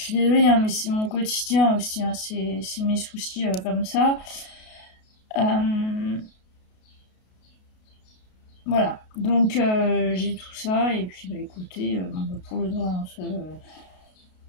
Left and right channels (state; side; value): late; right; 33 ms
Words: suis désolée, hein, mais c'est mon quotidien aussi, hein, c'est mes soucis comme ça. Voilà, donc j'ai tout ça, et puis écoutez, pour le droit, pas